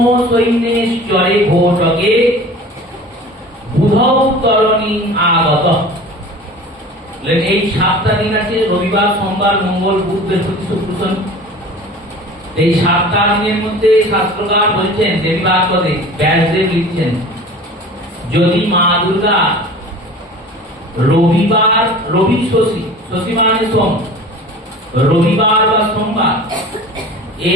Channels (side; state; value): both; normal; correlation 0.40